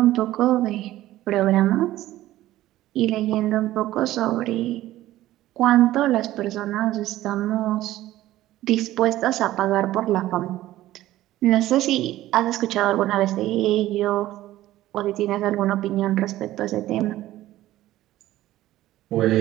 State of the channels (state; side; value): quieter; left; 15.1 dB